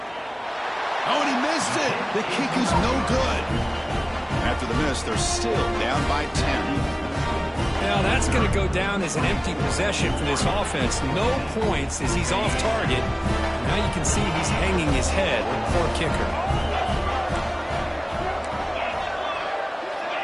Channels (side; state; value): both; identical; correlation 1.00